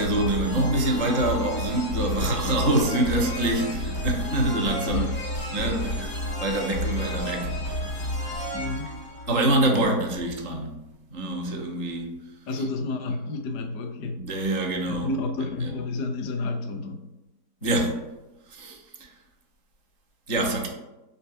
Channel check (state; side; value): late; right; 3.8 ms